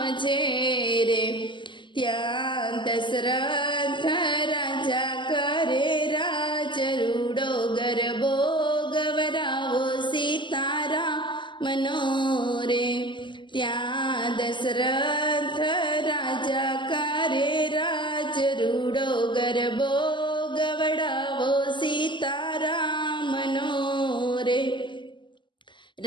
છે રે। ત્યાં દશરથ રાજા કરે રાજ રૂડો ગરબો ગવરાવો સીતારામનો રે। ત્યાં દશરથ રાજા કરે રાજ રૂડો ગરબો ગવડાવો સીતારામનો રે।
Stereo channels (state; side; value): late; right; 0.23 ms